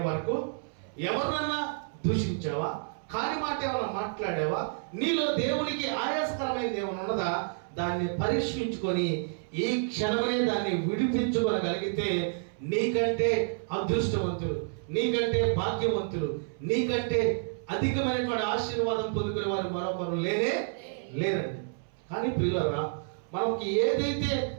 వరకు ఎవరినన్నా దూషించావా, కాని మాట ఏమైనా మాట్లాడావా, నీలో దేవునికి ఆయాసకరమైనది ఏమైనా ఉన్నదా, దాన్ని పరీక్షించుకొని ఈ క్షణమే దాన్ని విడిపించుకోగలిగితే నీకంటే అదృష్టవంతులు, నీకంటే భాగ్యవంతులు, నీకంటే అధికమైనటువంటి ఆశీర్వాదం పొందుకునే వారు మరొకరు లేరండి. కానీ ప్రియులారా, మనకి ఏదైతే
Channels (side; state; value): left; silent; 58 dB below the other